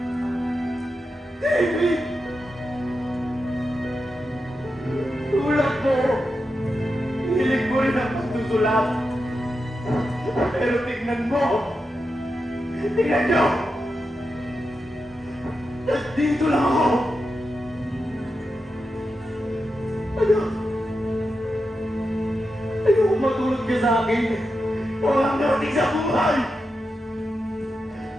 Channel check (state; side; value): normal; both; correlation 0.88